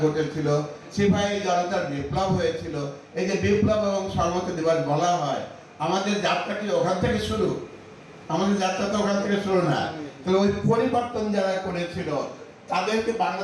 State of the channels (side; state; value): both; identical; correlation 1.00